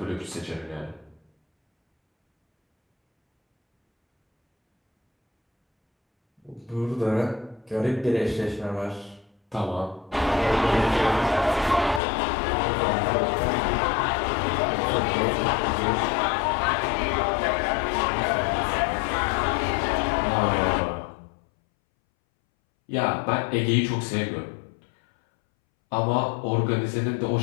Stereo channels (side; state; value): right; drops out; at 12.0 s